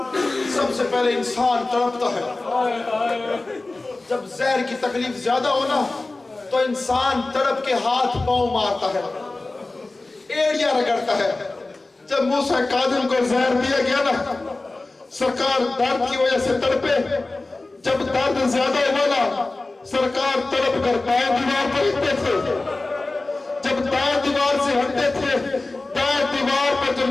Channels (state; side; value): quieter; right; 3.2 dB